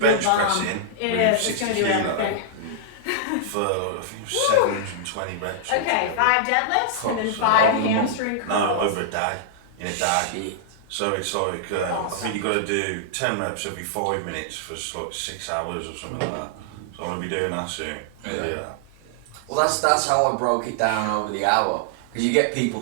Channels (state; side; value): different; both; correlation -0.01